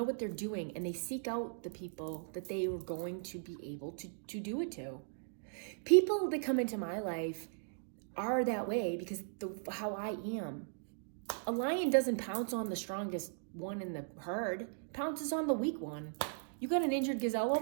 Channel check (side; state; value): left; silent; digital silence